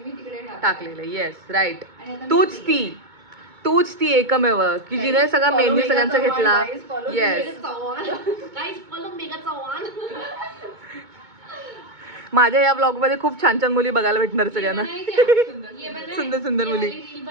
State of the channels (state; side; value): late; left; 2.2 ms